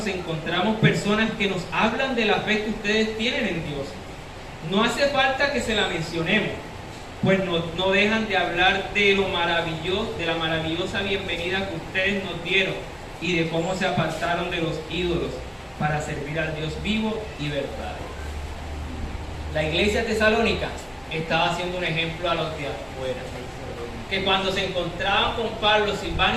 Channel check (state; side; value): identical; both; correlation 1.00